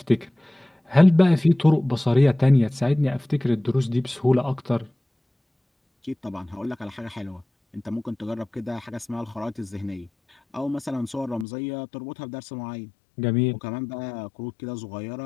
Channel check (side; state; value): right; drops out; at 11.5 s